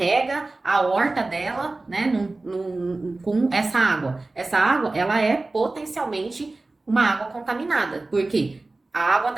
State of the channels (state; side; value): quieter; left; 3.2 dB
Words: a horta dela, né, com essa água. Essa água, ela é potencialmente uma água contaminada. Por quê? a água